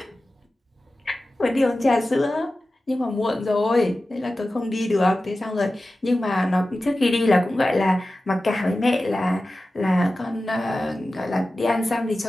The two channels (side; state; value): both; normal; correlation 0.95